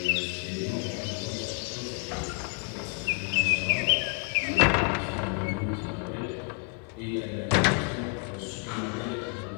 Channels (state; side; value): quieter; right; 37.8 dB